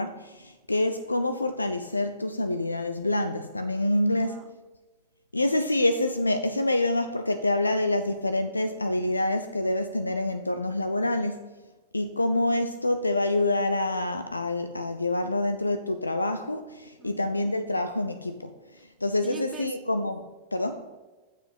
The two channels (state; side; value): inverted; both; correlation -0.84